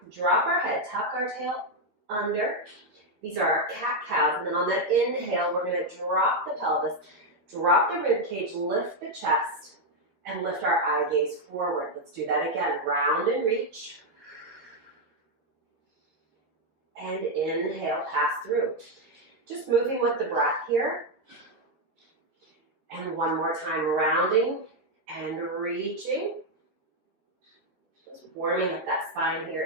drop our head, tuck our tail under. These are our cat-cows. And then on that inhale, we're going to drop the pelvis, drop the rib cage, lift the chest, and lift our eye gaze forward. Let's do that again. Round and reach. And inhale, pass through. Just moving with the breath here. And one more time, rounding and reaching. Just warming up that spine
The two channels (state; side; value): late; left; 13 ms